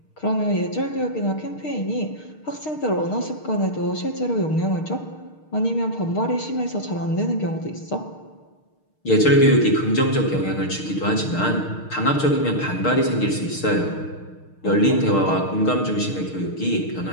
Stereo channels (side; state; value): right; late; 6.5 ms